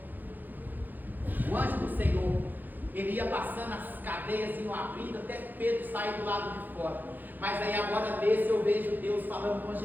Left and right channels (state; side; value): late; left; 0.086 ms